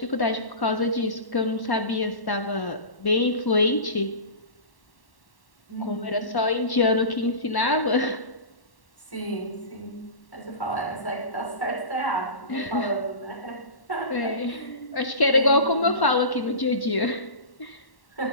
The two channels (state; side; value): late; right; 1.1 ms